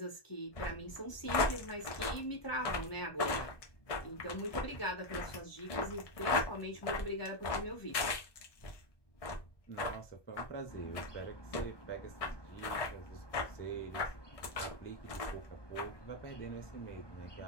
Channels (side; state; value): right; late; 1.2 ms